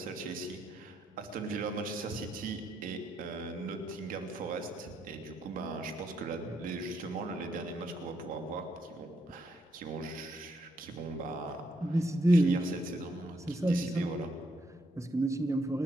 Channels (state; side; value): normal; both; correlation 0.76